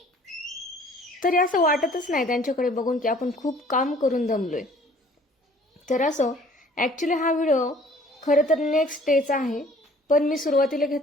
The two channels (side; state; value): both; normal; correlation 0.54